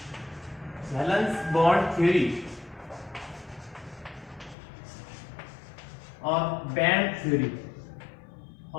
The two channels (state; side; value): drops out; right; at 4.5 s